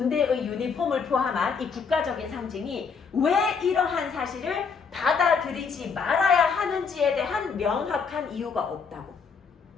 유니폼을 포함한 이 국가적인 상징이 왜 이러한 사실을 받아들이지 말아야 하는지에 대한 명확한 이유가 없다고.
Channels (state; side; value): quieter; right; 5.7 dB